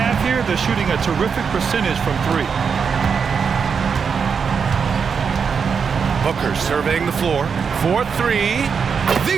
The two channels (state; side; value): quieter; left; 6.2 dB